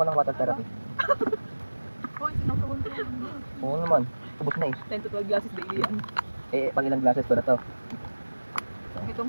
ng water therapy. Hoy, sinusuwan ko. Oo naman. Ubus na eh. 10 to 12 glasses daily yan. Eh, pag ilang glasses ko na to. Itong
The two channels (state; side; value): inverted; both; correlation -1.00